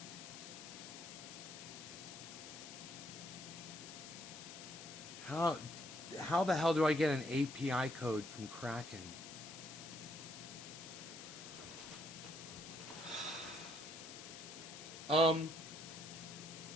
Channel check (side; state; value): left; noise; hiss, 11 dB below the sound